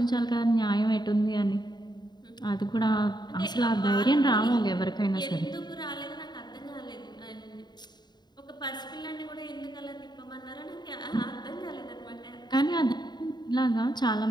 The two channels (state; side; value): late; right; 0.21 ms